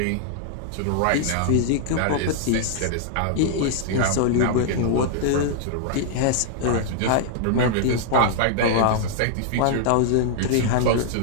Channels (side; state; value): both; different; correlation -0.01